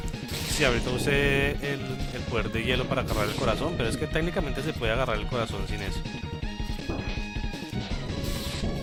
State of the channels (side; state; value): both; identical; correlation 1.00